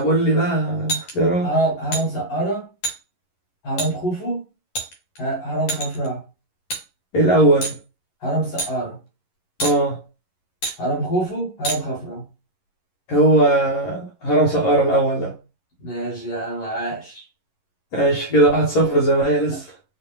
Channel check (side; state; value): right; late; 11 ms